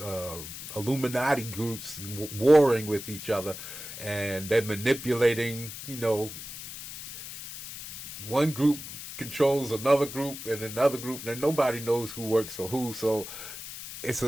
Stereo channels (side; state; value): left; noise; hiss, 11 dB below the sound